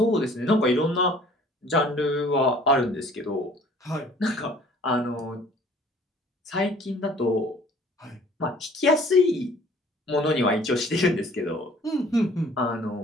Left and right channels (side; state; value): both; normal; correlation 0.53